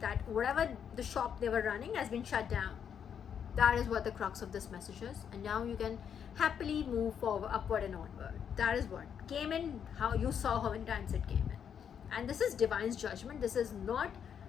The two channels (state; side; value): quieter; right; 8.0 dB